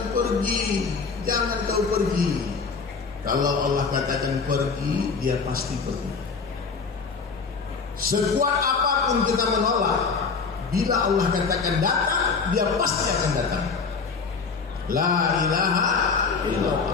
pergi, jangan kau pergi. Kalau Allah katakan pergi, dia pasti pergi. Sekuat apapun kita menolak, bila Allah katakan datang, dia pasti akan datang. La ilaha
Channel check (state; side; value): quieter; right; 5.0 dB